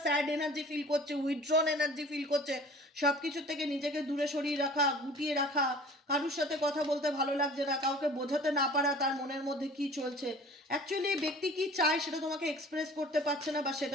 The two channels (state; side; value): normal; both; correlation 0.46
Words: স্যাড এনার্জি ফিল করছে, উইথড্রন এনার্জি ফিল করছে, সব কিছুর থেকে নিজেকে দূরে সরিয়ে রাখা, গুটিয়ে রাখা, কারোর সাথে কথা বলতে ভালো লাগছে না, কাউকে বোঝাতে না পারা তার মনের মধ্যে কি চলছে। অ্যাকচুয়ালি এই ব্যক্তি কি চায় সেটা তোমাকে এক্সপ্রেস করতে পারছে না বা